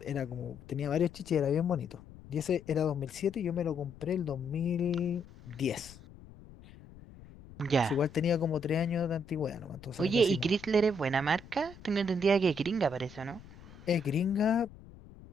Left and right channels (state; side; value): noise; left; rumble, 19 dB below the sound